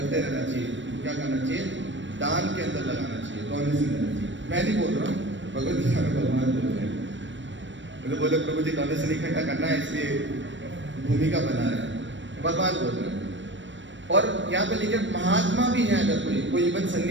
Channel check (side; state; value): left; late; 0.54 ms